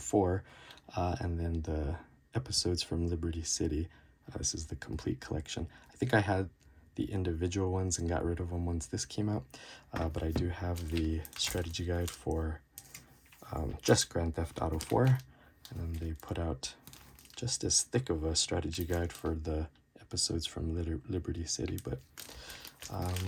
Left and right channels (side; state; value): both; identical; correlation 1.00